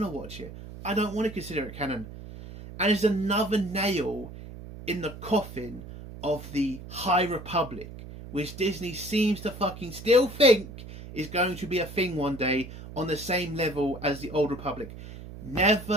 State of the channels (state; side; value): noise; right; hum, 13 dB below the sound